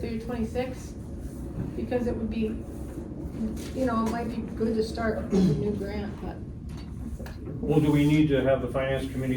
year 26, because it would be, you know, it might be good to start with a new grant, but. that's up to you. Well, do we need to have the finance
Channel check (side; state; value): both; identical; correlation 1.00